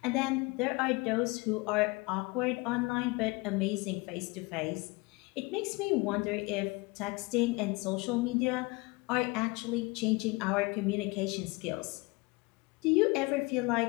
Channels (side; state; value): right; quieter; 25.7 dB